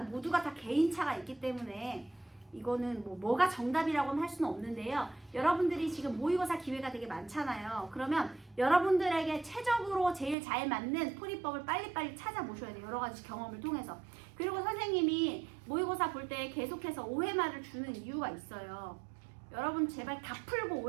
모두가 다 개인차가 있기 때문에 이거는 뭐가 정답이라고는 할 수는 없는데요. 여러분들이 지금 모의고사 기회가 되게 많잖아요. 그러면 여러분들에게 최적으로 제일 잘 맞는 풀이법을 빨리빨리 찾아보셔야 돼요. 여러 가지 경험을 통해서. 그리고 선생님이 모의고사 볼 때 계속해서 OMR을 주는 이유가 있어요. 여러분 제발 다 풀고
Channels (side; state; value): left; drops out; at 10.4 s